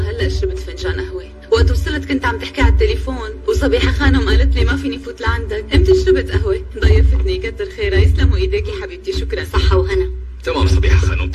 شربت فنجان قهوة. وقت وصلت كنت عم تحكي على التليفون وصبيحة خانم قالت لي ما فيني فوت لعندك. امتى شربت قهوة؟ ضيفتني، كتر خيرها. يسلموا ايديكي حبيبتي، شكرا. صحة وهنا. تمام صبيحة خانم،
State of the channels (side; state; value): both; identical; correlation 1.00